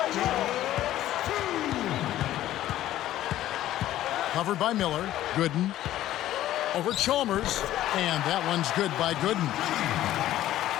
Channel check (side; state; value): right; quieter; 13.6 dB